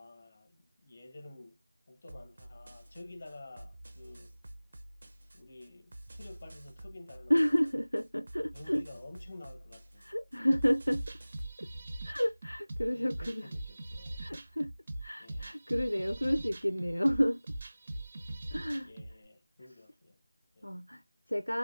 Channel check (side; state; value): both; inverted; correlation -0.99